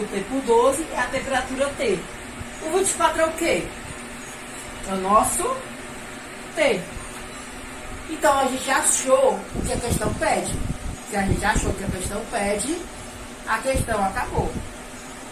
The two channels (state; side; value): identical; both; correlation 1.00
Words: T por 12 e a temperatura T. O 24 é o quê? É o nosso T. Então a gente achou o que a questão pede. Se a gente achou o que a questão pede, a questão acabou.